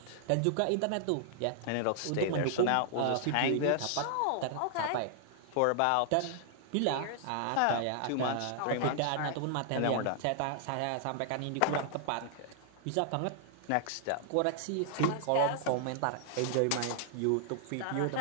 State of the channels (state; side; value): different; both; correlation 0.00